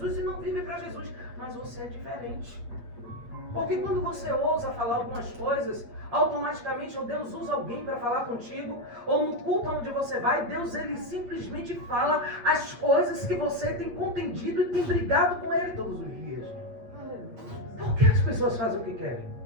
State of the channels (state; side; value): late; left; 8.5 ms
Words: e não vive para Jesus. Mas você é diferente. Porque quando você ousa falar algumas coisas, automaticamente ou Deus usa alguém para falar contigo, ou no culto onde você vai, Deus ele simplesmente fala as coisas que você tem contendido e tem brigado com Ele todos os dias. Por que as pessoas fazem o que querem?